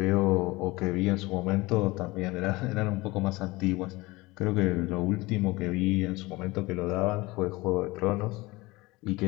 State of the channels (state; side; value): quieter; right; 21.7 dB